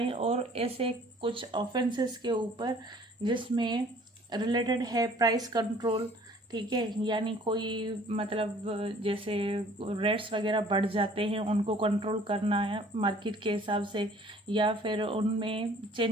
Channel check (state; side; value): normal; both; correlation 0.54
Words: और ऐसे कुछ ऑफेंसेस के ऊपर जिसमें रिलेटेड है प्राइस कंट्रोल, ठीक है, यानी कोई मतलब जैसे रेट्स वगैरह बढ़ जाते हैं उनको कंट्रोल करना है मार्केट के हिसाब से, या फिर उनमें